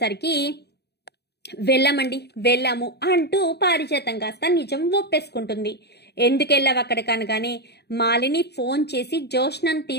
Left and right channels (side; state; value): right; late; 0.48 ms